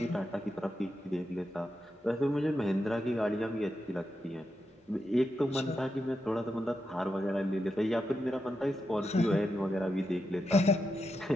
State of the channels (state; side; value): normal; both; correlation 0.87